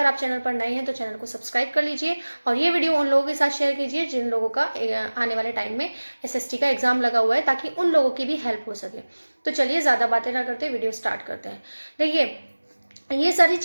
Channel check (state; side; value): inverted; both; correlation -1.00